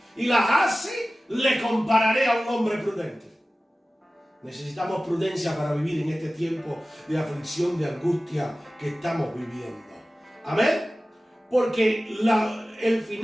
y las hace, le compararé a un hombre prudente. Necesitamos prudencia para vivir en este tiempo de aflicción, de angustia que estamos viviendo. Amén. Porque el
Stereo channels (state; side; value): normal; both; correlation 0.96